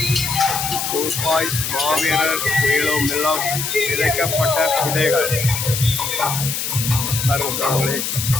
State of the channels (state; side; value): noise; left; hiss, 3 dB below the sound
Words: ரூபாய் மாவீரர் உயிரும் எல்லாம் விதைக்கப்பட்ட விதைகள் பாருங்களே.